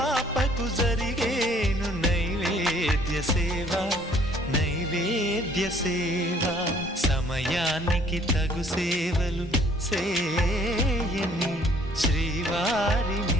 జరిగేను నైవేద్య సేవ నైవేద్య సేవ. సమయానికి తగు సేవలు సేయని శ్రీవారిని.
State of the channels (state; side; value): normal; both; correlation 0.59